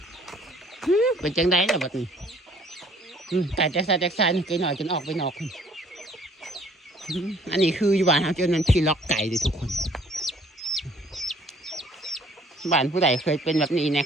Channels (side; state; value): both; normal; correlation 0.58